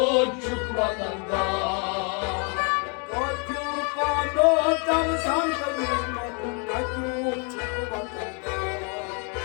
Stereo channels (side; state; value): right; quieter; 35.8 dB